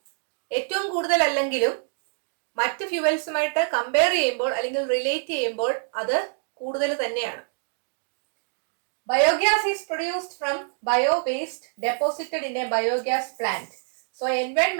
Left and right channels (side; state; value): left; silent; digital silence